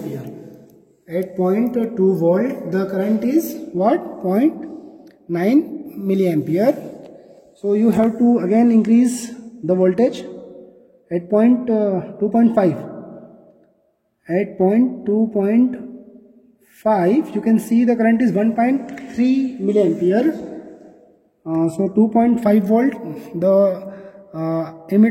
At 0.2 volt, the current is what? 0.9 milliampere. So you have to again increase the voltage at 2.5. At 2.5, you can see the current is 1.3 milliampere. So 2.5 volt, the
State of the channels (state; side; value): identical; both; correlation 1.00